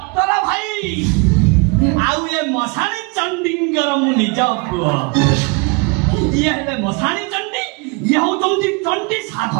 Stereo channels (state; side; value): quieter; left; 30.4 dB